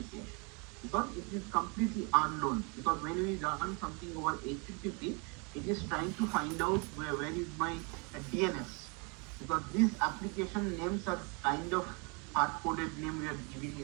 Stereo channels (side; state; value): left; quieter; 32.3 dB